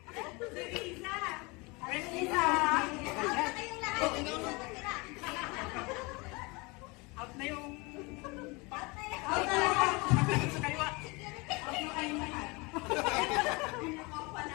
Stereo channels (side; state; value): right; quieter; 26.8 dB